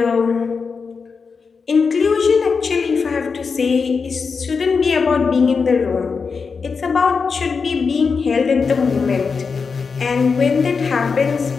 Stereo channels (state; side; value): quieter; right; 5.2 dB